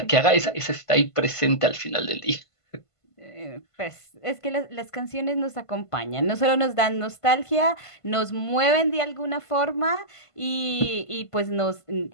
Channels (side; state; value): right; late; 1.5 ms